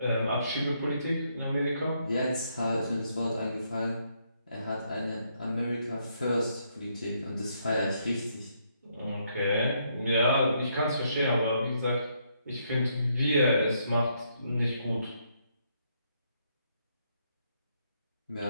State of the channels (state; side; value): inverted; both; correlation -0.74